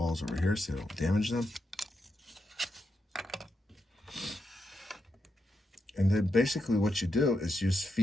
over here so they don't damage them. And then basically what you do is you just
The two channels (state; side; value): normal; both; correlation 0.85